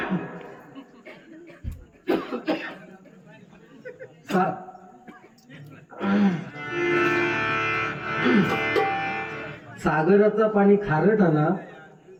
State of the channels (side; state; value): both; identical; correlation 1.00